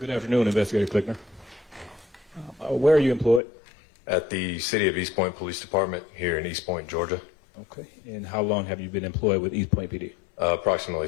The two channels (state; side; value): drops out; right; at 3.4 s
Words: afternoon, Investigator Clickner. Where are you employed? At the City of East Point Police Department here in East Point, Georgia. Okay. And how long have you been employed with East Point PD? Approximately